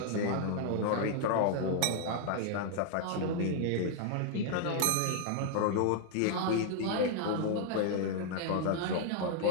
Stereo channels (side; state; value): both; different; correlation 0.00